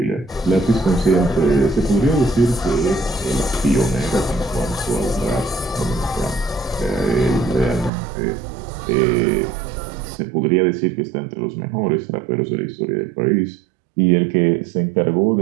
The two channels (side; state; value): left; drops out; at 7.9 s